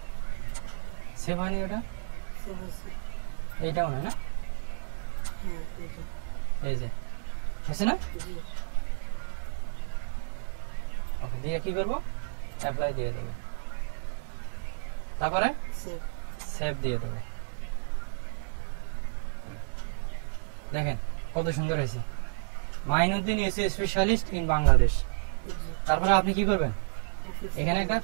সেভ হয়নি ওটা, সেভ হয়েছে এইটাও না, না হ্যাঁ এই যে এই যে আছে না, জি ওকে দিয়ে কি করবো, অ্যাপ্লাই দিয়ে দেবো, তারপরে সেভ সেভ দিয়ে দেবো। দেখেন কত সুন্দর হয়েছে, Mainuddin AC specialist in Bangladesh. জি তারপরে আপনি কি করবেন, অফিস এখানে একটা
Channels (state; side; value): silent; left; digital silence